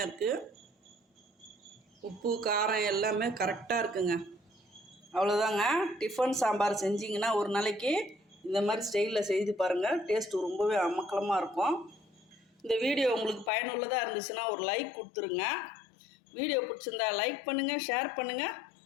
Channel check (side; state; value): right; drops out; at 13.5 s